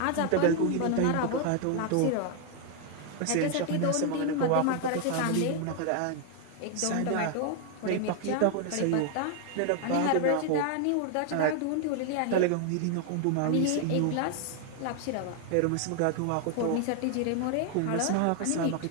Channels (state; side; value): different; both; correlation 0.00